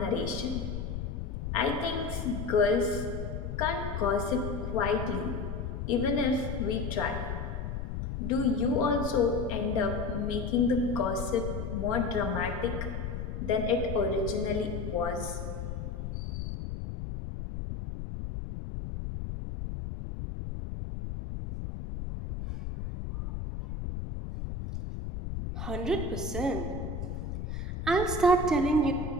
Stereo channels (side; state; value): left; noise; rumble, 5 dB below the sound